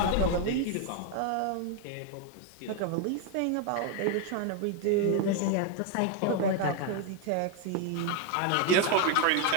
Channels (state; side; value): different; both; correlation 0.01